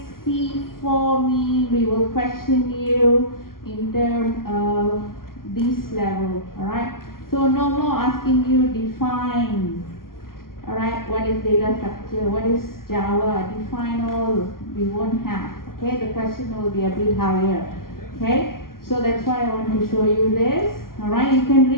C4 mean, we will question you in terms of this level. Alright? So no more asking you define. Alright, what is data structure? What is Java? Define all. We won't have. Okay, the question will be a bit higher. Okay, so that's why I want to show you this. Alright, you can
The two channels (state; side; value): late; right; 0.92 ms